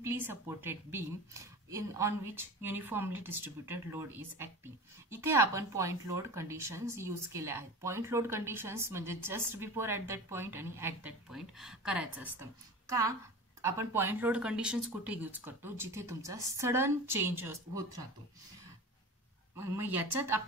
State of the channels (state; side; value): normal; both; correlation 0.33